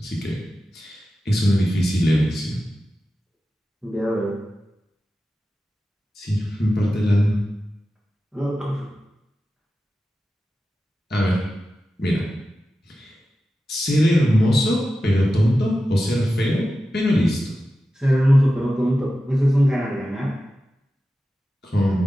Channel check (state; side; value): normal; both; correlation 0.93